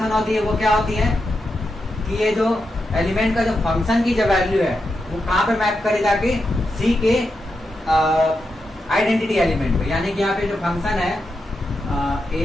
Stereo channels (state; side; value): normal; both; correlation 0.87